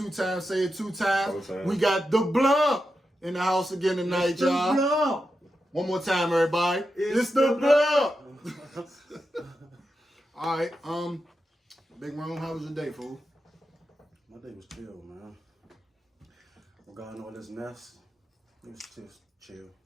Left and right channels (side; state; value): both; normal; correlation 0.88